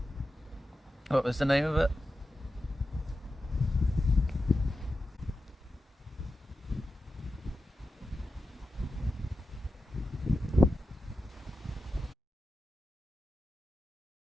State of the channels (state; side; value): normal; both; correlation 0.92